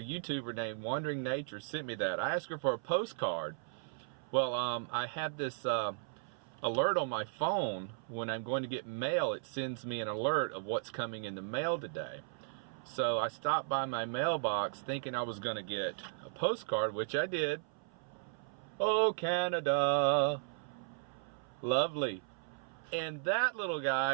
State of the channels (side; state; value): left; silent; 54 dB below the other